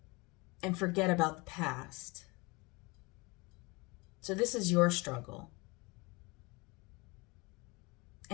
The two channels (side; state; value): right; quieter; 26.0 dB